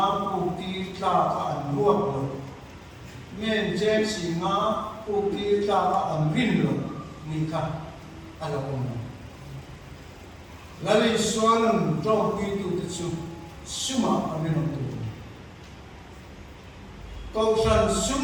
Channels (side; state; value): both; identical; correlation 1.00